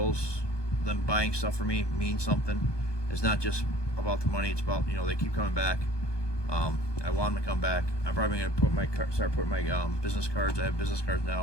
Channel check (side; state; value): right; late; 1.2 ms